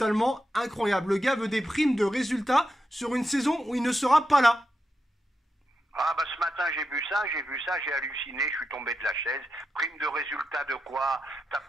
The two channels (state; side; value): normal; both; correlation 0.87